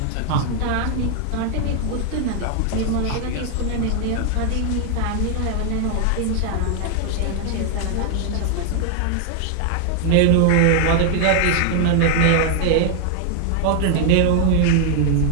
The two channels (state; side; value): different; both; correlation 0.00